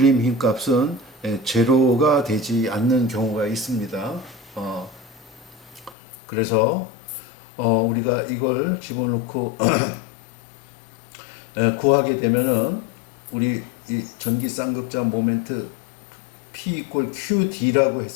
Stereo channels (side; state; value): right; drops out; at 6.0 s